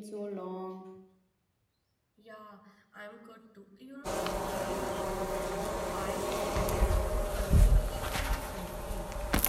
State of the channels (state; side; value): identical; both; correlation 1.00